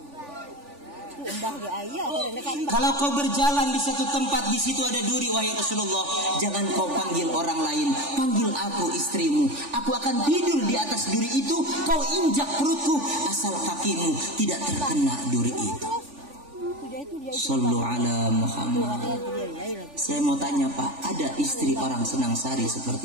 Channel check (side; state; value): left; late; 3.4 ms